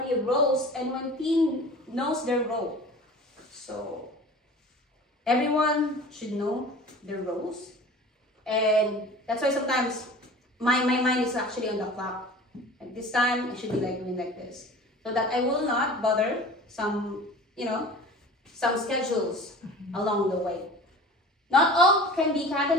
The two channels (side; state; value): both; normal; correlation 0.40